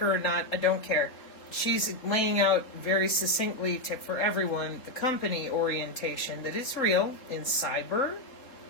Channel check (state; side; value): late; right; 3.6 ms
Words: or not, I don't care. She's laying out very succinctly for everyone the company orientation that is real in cyber,